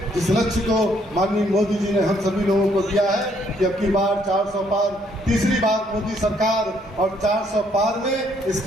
जिस लक्ष्य को माननीय मोदी जी ने हम सभी लोगों को दिया है कि अब की बार 400 पार, तीसरी बार मोदी सरकार, और 400 पार में इस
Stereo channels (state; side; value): normal; both; correlation 0.68